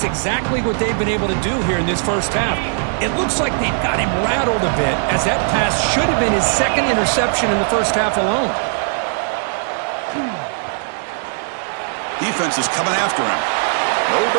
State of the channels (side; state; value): left; silent; digital silence